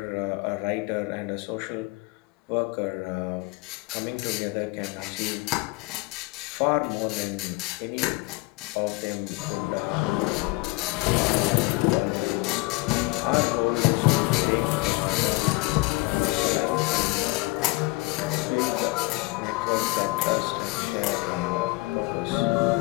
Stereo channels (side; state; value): right; quieter; 24.2 dB